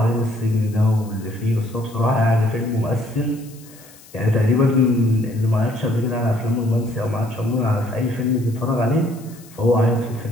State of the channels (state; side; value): noise; left; hiss, 23 dB below the sound